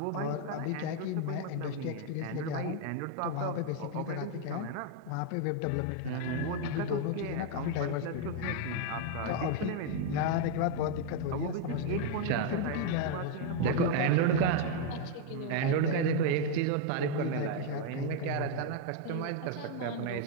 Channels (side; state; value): both; different; correlation 0.01